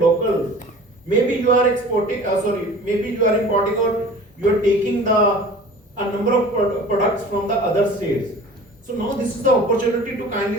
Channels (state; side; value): normal; both; correlation 0.42